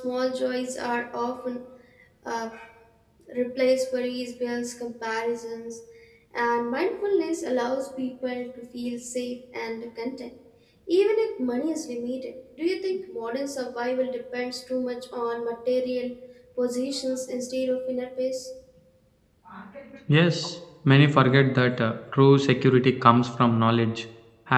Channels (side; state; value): both; identical; correlation 1.00